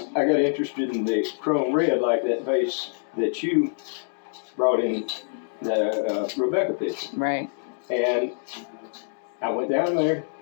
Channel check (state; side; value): silent; right; digital silence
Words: got interested in the chrome red, like that vase that you brought in, the Rebecca picture. Right. And I went down there,